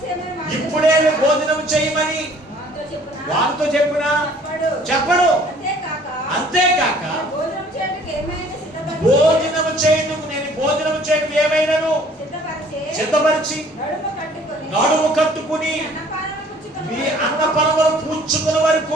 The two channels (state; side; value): normal; both; correlation 0.55